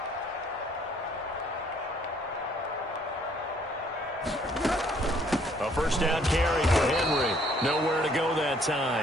A first down carry for Henry. Nowhere to go that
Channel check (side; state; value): both; normal; correlation 0.63